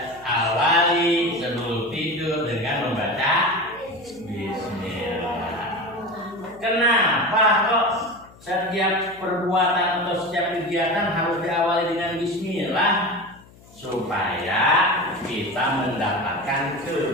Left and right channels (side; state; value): left; noise; hum, 24 dB below the sound